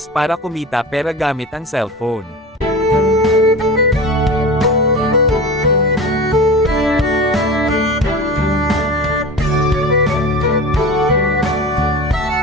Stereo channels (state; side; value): normal; both; correlation 0.32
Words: para kumita pera gamit ang cellphone.